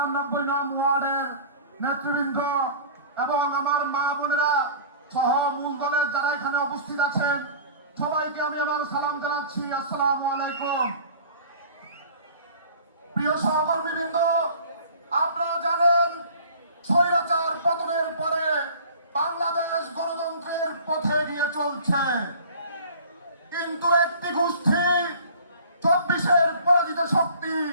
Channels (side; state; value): both; inverted; correlation -0.44